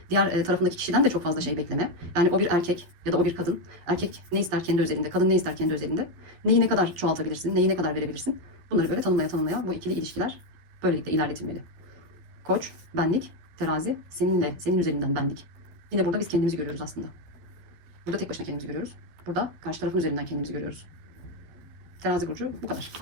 diğer tarafındaki kişiden de çok fazla şey bekleme. Yani o bir erkek ya da o bir kadın. Erkek ne ister kendi özelinde, kadın ne ister kendi özelinde. Neyi ne kadar çoğaltabilirsin, neyi ne kadar verebilirsin. Bunları böyle tanımlaya bu ikili ilişkiler böylelikle ilerletilmeli. Koç, benlik, terazi, senin üzerinden benlik. Yine burada biz kendimizi görüyoruz aslında. Burada tek başına kendimizi görüyoruz. Burada karşı tarafın üzerinden kendimizi görüyoruz. Terazi burcu bu kadar.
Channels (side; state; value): left; late; 12 ms